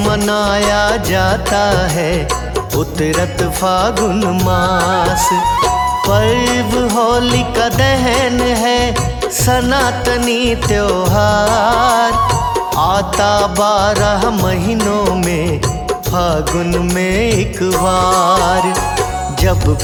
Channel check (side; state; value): both; identical; correlation 1.00